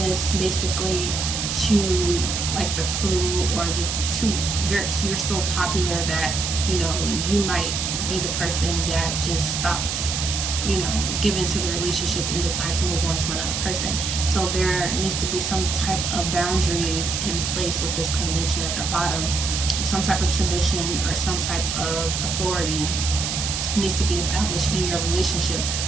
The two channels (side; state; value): right; noise; hiss, 2 dB below the sound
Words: basically, to like the crew, or just you're so popular that, you know, you might be the person that just stops, you know, giving to the relationship and decides to move on to another person. So there needs to be some type of boundaries in place with this convention at the bottom. Some type of tradition or some type of authority needs to be established in your relationship,